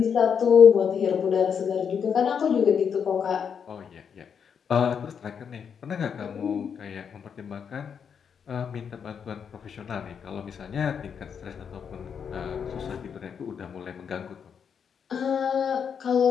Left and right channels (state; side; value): quieter; right; 7.1 dB